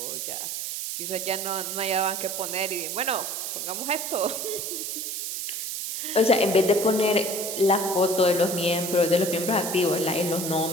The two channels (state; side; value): noise; right; hiss, 4 dB below the sound